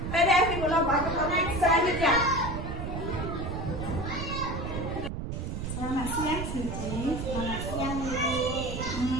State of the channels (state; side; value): noise; right; rumble, 5 dB below the sound